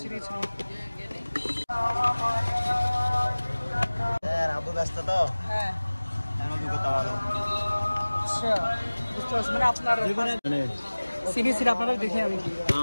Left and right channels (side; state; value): both; inverted; correlation -1.00